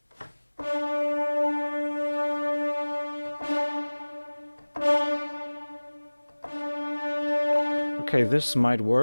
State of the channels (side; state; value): both; inverted; correlation -1.00